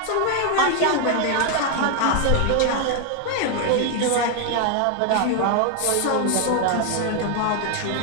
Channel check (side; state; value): both; different; correlation 0.00